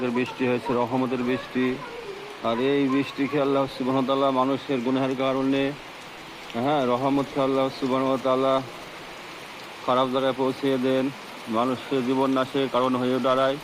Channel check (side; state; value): both; identical; correlation 1.00